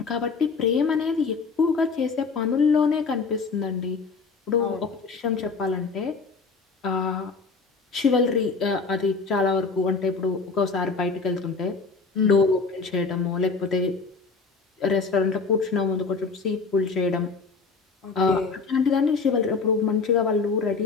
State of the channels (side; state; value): right; quieter; 4.5 dB